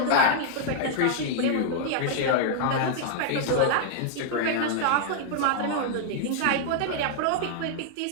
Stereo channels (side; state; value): both; different; correlation -0.01